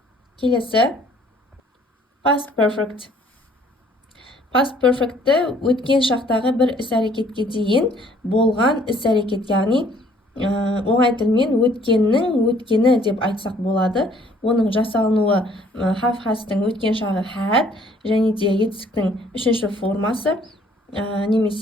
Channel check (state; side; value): normal; both; correlation 0.60